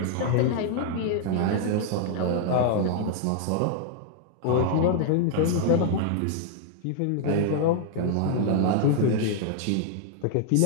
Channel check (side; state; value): both; different; correlation 0.00